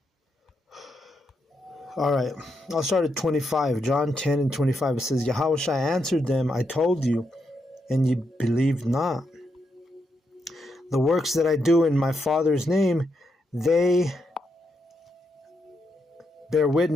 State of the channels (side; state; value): both; normal; correlation 0.82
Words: All right, I'll start at 25. John 10 and 25. It says, Yahushua answered them, I told you, and ye believed not. The works that I do in my Father's name, they bear